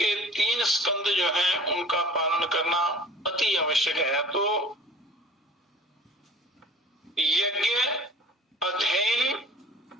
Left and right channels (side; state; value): both; normal; correlation 0.43